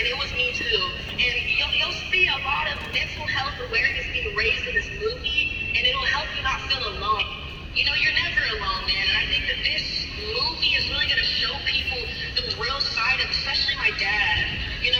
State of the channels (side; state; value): both; identical; correlation 1.00